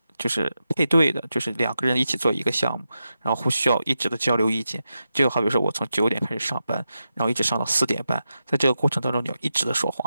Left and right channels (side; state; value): both; inverted; correlation -0.89